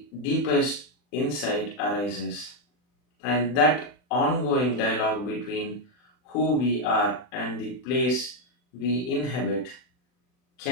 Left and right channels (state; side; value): late; right; 40 ms